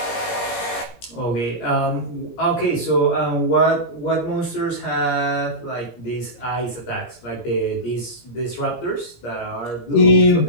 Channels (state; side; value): late; right; 17 ms